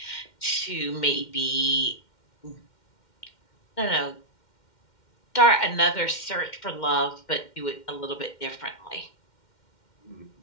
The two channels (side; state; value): right; late; 2.1 ms